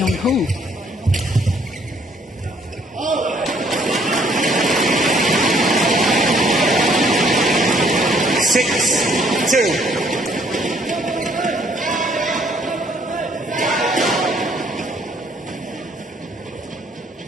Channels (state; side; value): normal; both; correlation 0.64